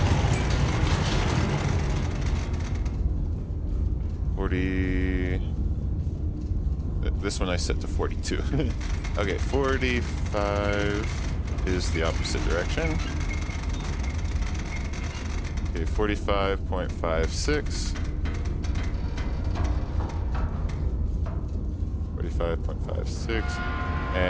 40. This one I set to 42. Okay, 45 is the opposite direction. Okay, 45.56. 45.56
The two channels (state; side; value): identical; both; correlation 1.00